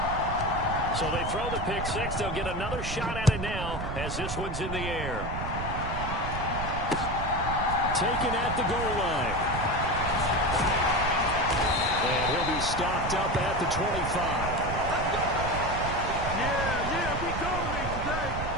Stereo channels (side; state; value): right; noise; rumble, 5 dB below the sound